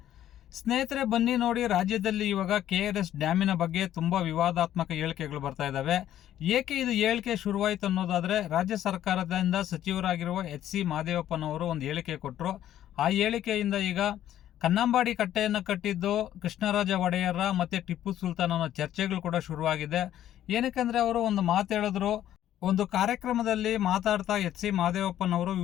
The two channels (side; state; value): right; quieter; 11.8 dB